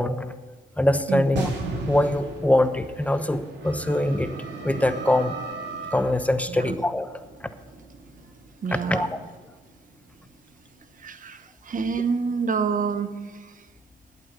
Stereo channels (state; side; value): normal; both; correlation 0.81